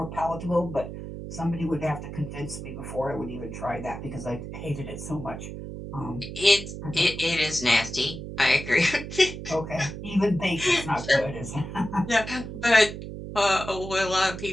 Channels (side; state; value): right; noise; hum, 9 dB below the sound